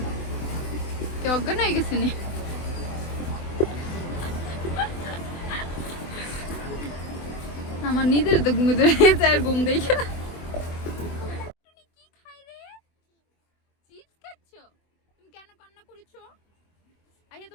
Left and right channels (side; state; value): right; late; 24 ms